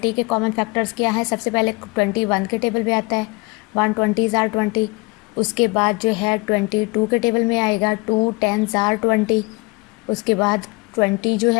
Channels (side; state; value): right; quieter; 26.4 dB